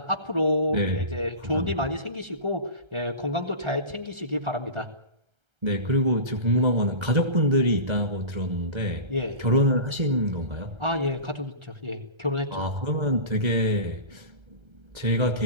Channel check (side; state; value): left; late; 1.3 ms